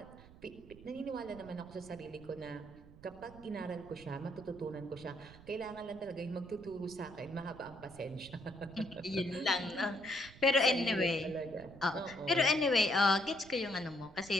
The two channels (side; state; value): right; noise; rumble, 20 dB below the sound